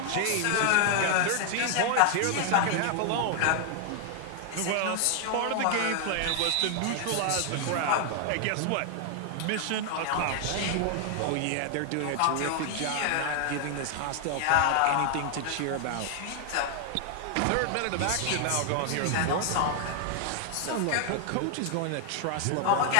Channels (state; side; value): different; both; correlation 0.00